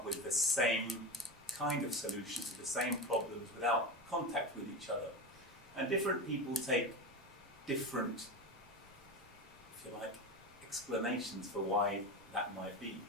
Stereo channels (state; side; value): normal; both; correlation 0.22